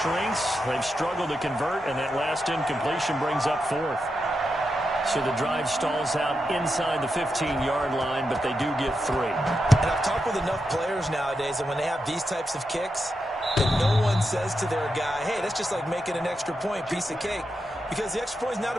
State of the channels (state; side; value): normal; both; correlation 0.87